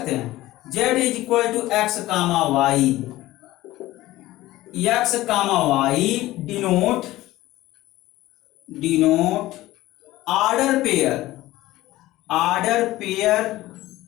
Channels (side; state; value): right; quieter; 16.8 dB